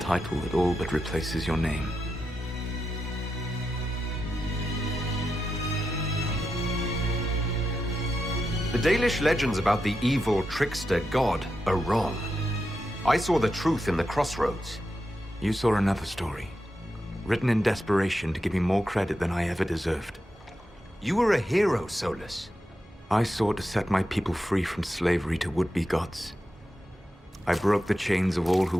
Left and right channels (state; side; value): normal; both; correlation 0.88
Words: that all but replaces your name. The Dalish legends about the evil trickster god are wrong. I saw the truth in the crossroads. You saw another story, written in desperation to give me more credit than I ever deserved. You were a hero, Solus. I sought to set my people free from slavery to would-be gods. I broke the chains of all who